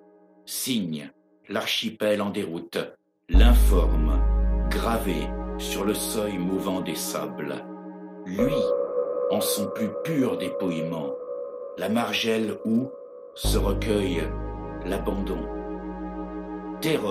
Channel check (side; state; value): both; identical; correlation 1.00